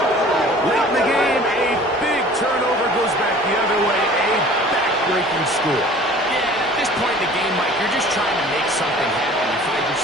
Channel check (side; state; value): both; normal; correlation 0.47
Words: Late in the game, a big turnover goes back the other way. A back-breaking score. Yeah, at this point in the game, Mike, you're just trying to make something happen. You find